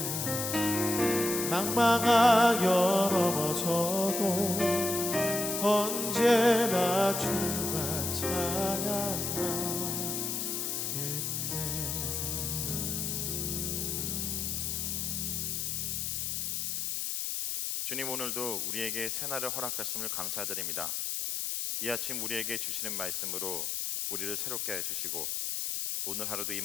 낭망하여 넘어져도 언제나 주만 찬양하겠네. 주님, 오늘도 우리에게 새날을 허락하심을 감사드립니다. 이 아침 우리에게 주시는 말씀으로 우리를 새롭게 해주시고 오늘 하루도 이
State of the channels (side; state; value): left; noise; hiss, 1 dB below the sound